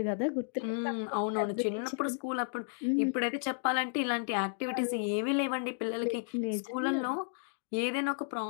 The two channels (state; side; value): silent; right; digital silence